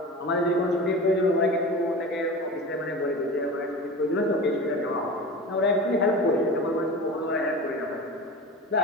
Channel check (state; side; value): normal; both; correlation 0.31